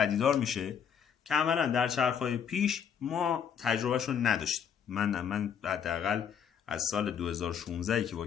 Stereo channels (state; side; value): quieter; right; 7.8 dB